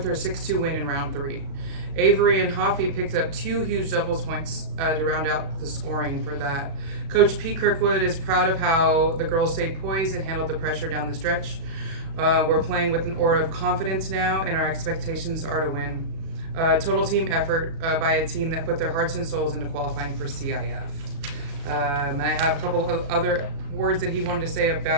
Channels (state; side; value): late; left; 36 ms